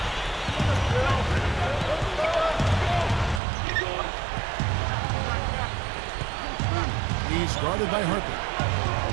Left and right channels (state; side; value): drops out; left; at 3.4 s